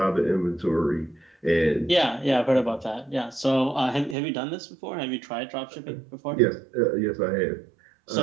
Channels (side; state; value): left; drops out; at 4.2 s